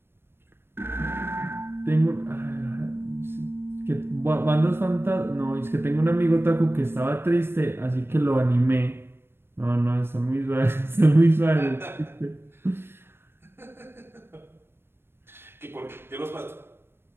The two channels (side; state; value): left; late; 0.11 ms